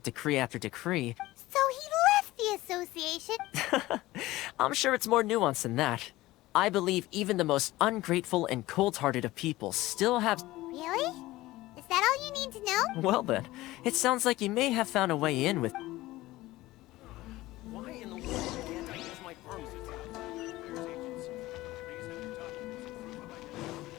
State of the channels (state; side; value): quieter; right; 17.9 dB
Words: decree after decree... So he left the association? I'm sure it's more nuanced than that. I believe even the most ungrateful and cold-hearted of people still have... Really? Is that all you need to know? Well then, it sounds like you may have found a way in with... Why in the world can't I use my